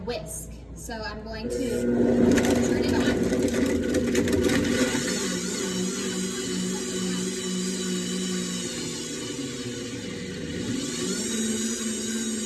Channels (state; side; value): identical; both; correlation 1.00